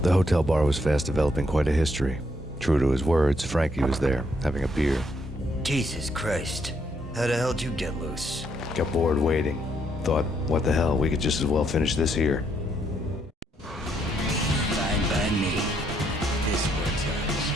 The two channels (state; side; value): normal; both; correlation 0.73